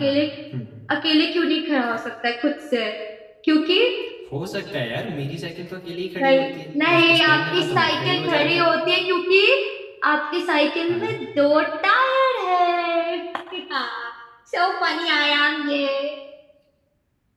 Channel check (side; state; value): both; identical; correlation 1.00